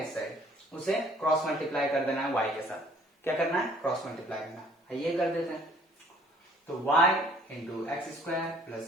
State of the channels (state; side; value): normal; both; correlation 0.57